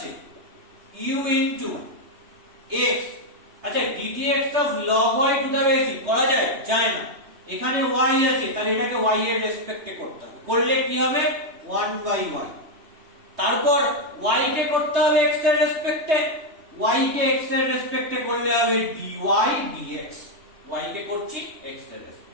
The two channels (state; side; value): late; left; 3.3 ms